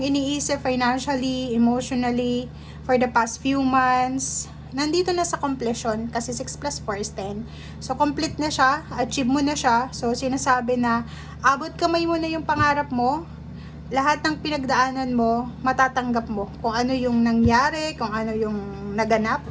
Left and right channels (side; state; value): both; identical; correlation 1.00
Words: iniisip financially, emotionally, for the past few months, nandito na sa completion kasi 6 plus 4 is 10. So, complete na siya, achieve mo na siya. So, sinasabi na abot kamay mo na yung pangarap mo, lahat ng pinagdaanan mo, matatanggap mo. Kung ano yung nangyari, kung ano yung naganap.